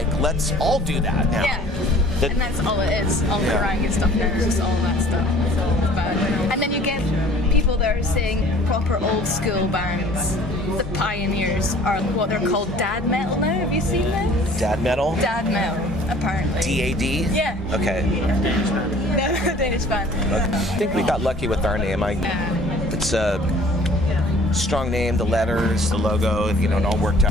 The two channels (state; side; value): normal; both; correlation 0.51